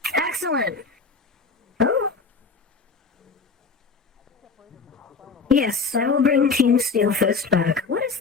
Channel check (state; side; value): quieter; right; 4.7 dB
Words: Excellent. Oh. Yes, I will bring Team Steelfist back. What is